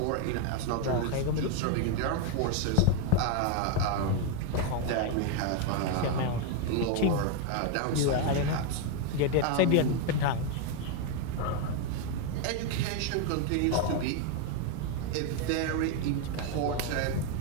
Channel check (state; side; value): different; both; correlation 0.02